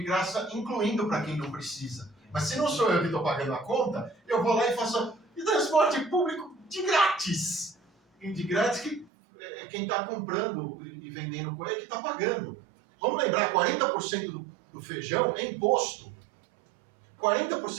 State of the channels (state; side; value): drops out; left; at 9.1 s